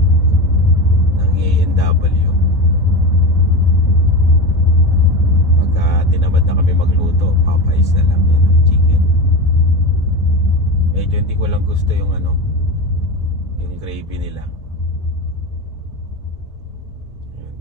ng A&W. Pagka tinamad na kami magluto, Popeyes na lang yun, chicken. Medyo hindi ko lang gusto yung yung gravy nila.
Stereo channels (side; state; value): both; normal; correlation 0.23